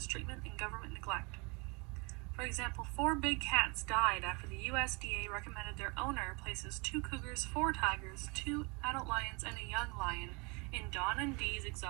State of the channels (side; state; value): left; quieter; 30.1 dB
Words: treatment and government neglect. For example, 4 big cats died after the USDA recommended their owner places 2 cougars, 4 tigers, 2 adult lions, and a young lion in Don and Dee's